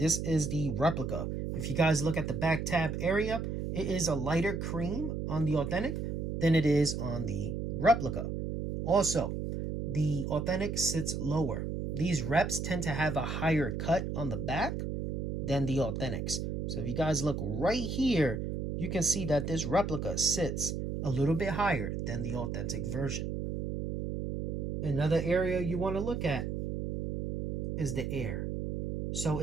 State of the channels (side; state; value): right; noise; hum, 3 dB below the sound